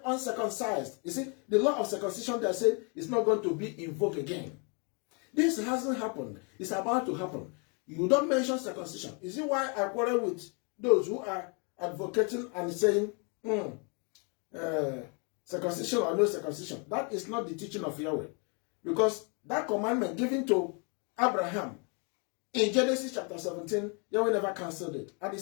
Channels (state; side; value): quieter; right; 35.7 dB